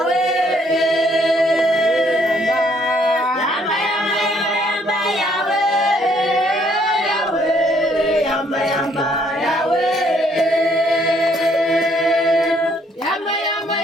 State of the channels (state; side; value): normal; both; correlation 0.66